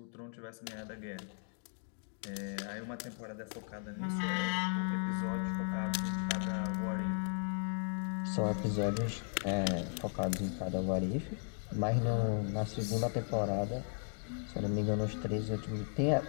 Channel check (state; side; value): silent; right; 54 dB below the other